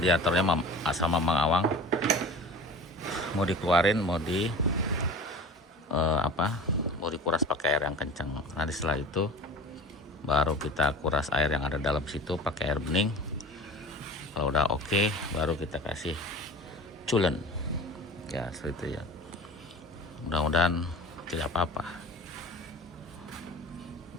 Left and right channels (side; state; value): both; normal; correlation 0.37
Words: asal Mamang Awang mau dikeluarin, mau mau dikuras pakai air yang kencang. Nanti setelah itu baru kita kuras air yang ada dalam situ pakai air bening. Kalau udah oke, baru kita kasih coolant ya, seperti itu ya. Mudah-mudahan tidak apa-apa